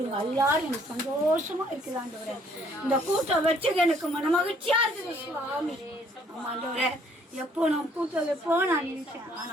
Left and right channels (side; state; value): both; normal; correlation 0.63